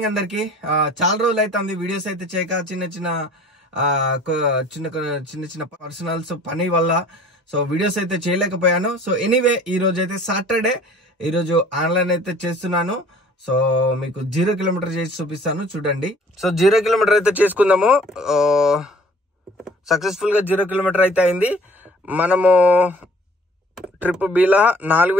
అందరికి. చాలా రోజులు అయితే వీడియోస్ అయితే చేయక చిన్న చిన్న పర్సనల్స్ పని వల్ల సో వీడియోస్ అయితే చేయలేకపోయాను. సో ఎనీవే ఈ రోజు అయితే సాటర్డే, ఈ రోజు ఆన్లైన్ అయితే చేస్తున్నాను. సో మీకు 0 కిలోమీటర్ చేసి చూపిస్తాను, చూడండి. సో 0 కిలోమీటర్ అయితే చేసుకుందాము. సక్సెస్ఫుల్ గా 0 కిలోమీటర్ అయితే అయింది. మనము ట్రిప్ బీలా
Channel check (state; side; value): normal; both; correlation 0.52